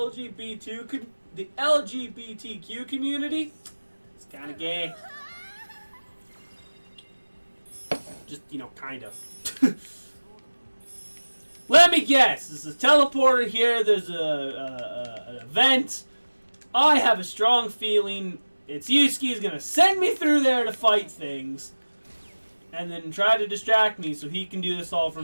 community is kind of gay. Just, you know, kind of. Let me guess. There's a teleporter here. There's an event. I have a strong feeling it's Yusuke's gonna send me through there to fight things, and then try to distract me so he can do this all for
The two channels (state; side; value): inverted; both; correlation -1.00